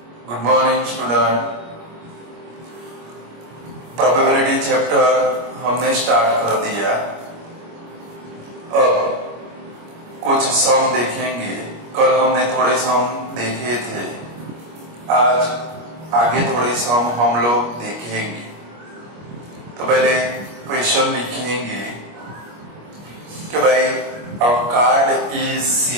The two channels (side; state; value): left; late; 25 ms